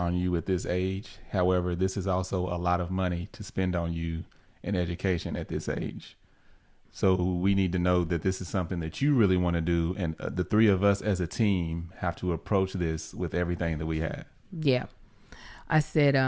you at this age. However, this is also a lot of money to spend on you in education at this age. So we need to know that this is something that you really want to do. And the three of us as a team have to approach this with everything that we have. Yeah. I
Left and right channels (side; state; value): both; identical; correlation 1.00